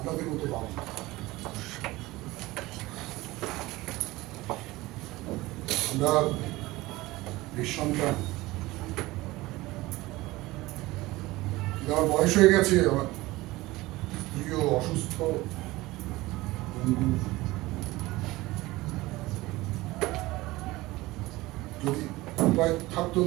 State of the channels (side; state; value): left; quieter; 19.5 dB